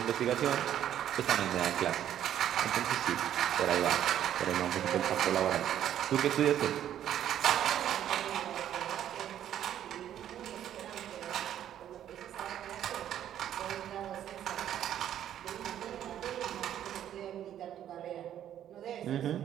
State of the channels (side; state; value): left; quieter; 10.8 dB